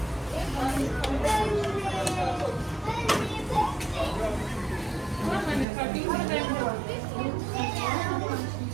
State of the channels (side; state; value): left; drops out; at 5.7 s